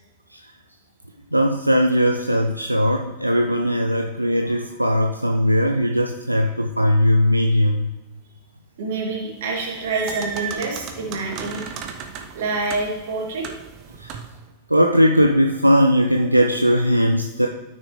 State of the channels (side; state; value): both; inverted; correlation -0.83